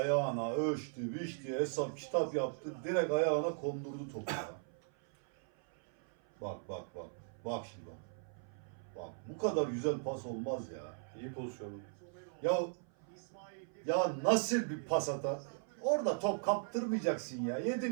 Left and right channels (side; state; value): left; silent; 52 dB below the other